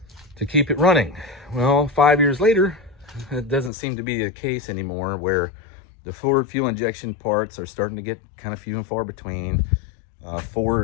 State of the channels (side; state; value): right; drops out; at 3.7 s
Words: to keep it running. Well, 5 years later, it doesn't seem to be the case anymore, where the Ford fuel injection parts are starting to get kind of few and far between.